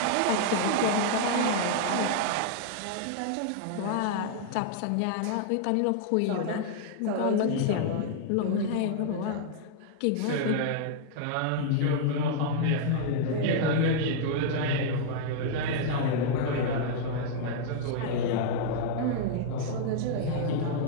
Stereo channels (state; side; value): different; both; correlation -0.01